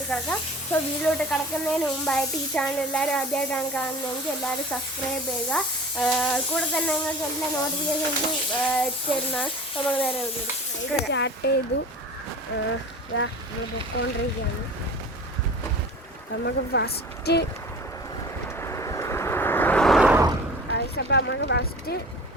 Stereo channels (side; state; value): both; normal; correlation 0.40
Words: കിടക്കാം. സോ വീട്ടിലോട്ട് കിടക്കുന്നതിന് മുമ്പായിട്ട് ഈ ചാനൽ എല്ലാവരും ആദ്യമായിട്ടാണ് കാണുന്നതെങ്കിൽ എല്ലാവരും സബ്സ്ക്രൈബ് ചെയ്യുക. കൂടെ തന്നെ നിങ്ങൾക്ക് എല്ലാ നോട്ടിഫിക്കേഷൻസും എത്തിച്ചേരുന്നതാണ്. നമുക്ക് നേരെ വീട്ടിലോട്ട് സ്റ്റാർട്ട് ചെയ്തു. നമ്മൾ പൊക്കോണ്ടിരിക്കുകയാണ്. നമുക്ക് ഫസ്റ്റ്